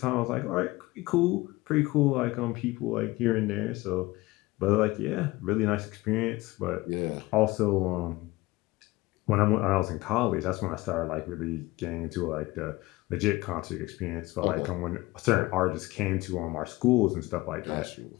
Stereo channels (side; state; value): right; quieter; 20.3 dB